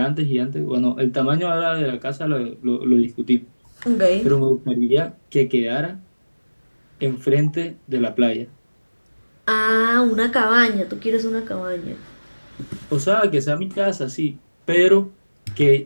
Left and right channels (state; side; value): inverted; both; correlation -1.00